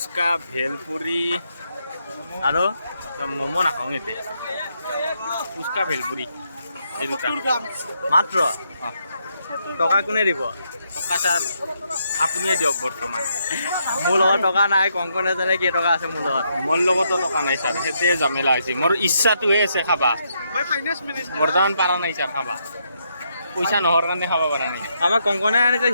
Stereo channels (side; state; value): both; inverted; correlation -0.78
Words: ভেলপুৰি আৰু ম'ম' নাখাওঁ এতিয়া ফুচকা ভেলপুৰি এই দুটা মাত্ৰ টকা কোনে দিব টকা ছাৰ আপুনিয়ে দিয়ক বৰ্তমান মোৰ লগত টকা নাই কংকনে জানে কেই টকা আছে মোৰ লগতো টকা নাই ছাৰ সেইটোৱে জামেলা হৈছে মোৰ ইচ্ছাটোহে আছে খাবা বৰ্তমান পাৰা নাই ছাৰ খাবা পইচা নহৰ কাৰণে খাব পৰা নাই আমাক কংকনে আনিছে